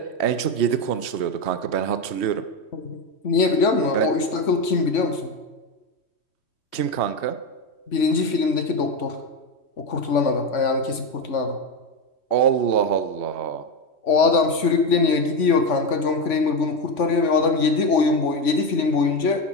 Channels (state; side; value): late; right; 3.5 ms